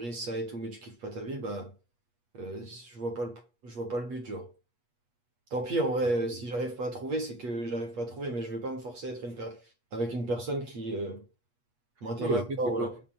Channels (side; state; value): left; late; 8.3 ms